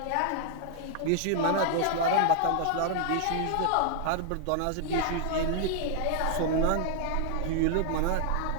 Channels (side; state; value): both; different; correlation 0.00